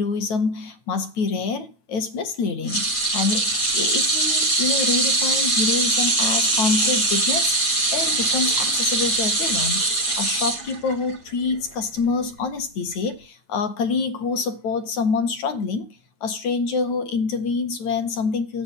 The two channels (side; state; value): right; late; 9.3 ms